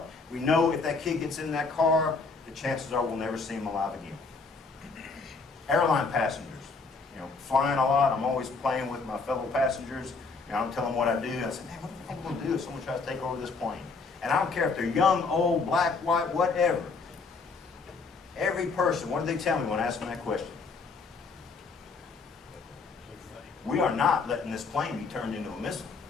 We know if that kid gets in that car, the chances are we'll never see him alive again. Airline passengers, you know, flying a lot. I'm always playing with my fellow passengers. You know, I'm telling them what I do. I say, "Man, what the heck am I going to do if someone tries to take over this plane?" And I don't care if they're young, old, black, white, whatever. Every person, what do they tell me when I ask them that question? We are not letting this plane be turned into a missile.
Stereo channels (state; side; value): quieter; right; 4.3 dB